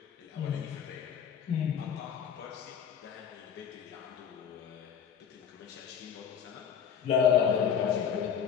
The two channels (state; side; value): quieter; right; 7.9 dB